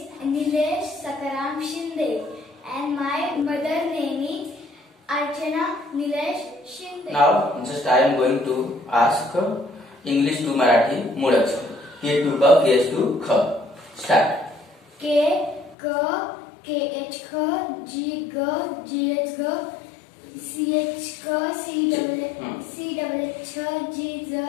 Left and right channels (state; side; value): drops out; right; at 15.8 s